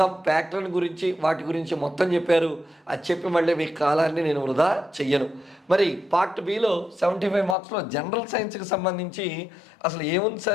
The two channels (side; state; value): right; drops out; at 7.6 s